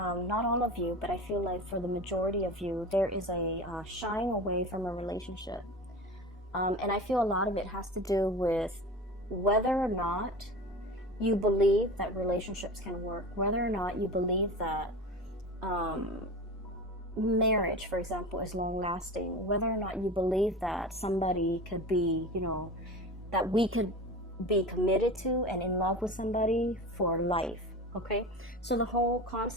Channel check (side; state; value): both; normal; correlation 0.31